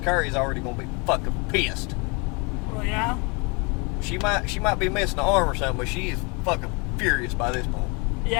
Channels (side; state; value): right; quieter; 30.8 dB